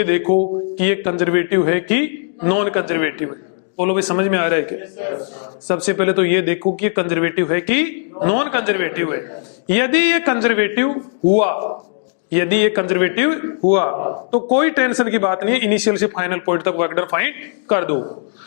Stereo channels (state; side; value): silent; right; digital silence